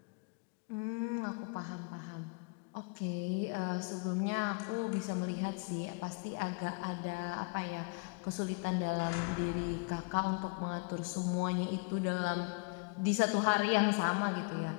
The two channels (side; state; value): right; quieter; 31.7 dB